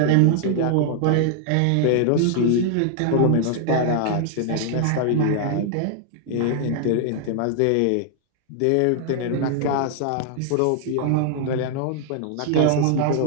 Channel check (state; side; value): different; both; correlation 0.00